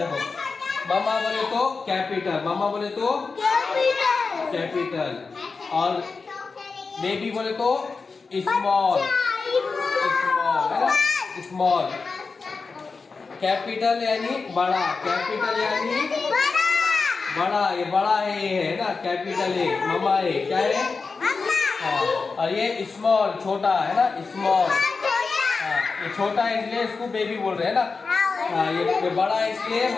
मामा बोले तो कैपिटल, मामा बोले तो कैपिटल, और बेबी बोले तो स्मॉल, स्मॉल है ना, स्मॉल। कैपिटल यानी बड़ा, कैपिटल यानी बड़ा, ये बड़ा है, ये है ना कैपिटल है, मामा है, क्या है? हाँ, और ये स्मॉल छोटा है ना, स्मॉल। हाँ, ये छोटा है इसलिए इसको बेबी बोल रहे हैं ना। हाँ, ये बड़ा है इसलिए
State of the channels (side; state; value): right; quieter; 4.5 dB